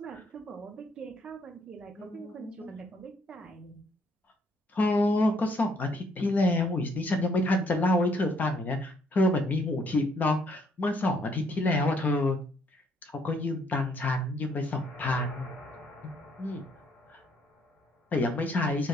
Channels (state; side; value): normal; both; correlation 0.68